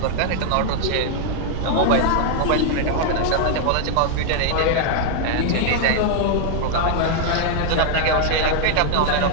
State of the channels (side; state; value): both; different; correlation 0.00